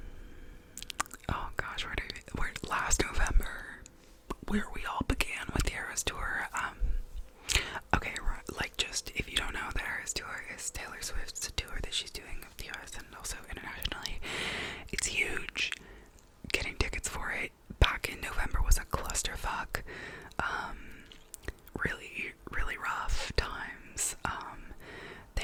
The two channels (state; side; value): identical; both; correlation 1.00